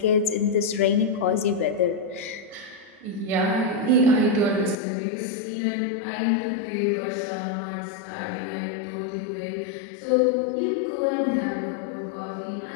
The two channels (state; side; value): drops out; right; at 4.8 s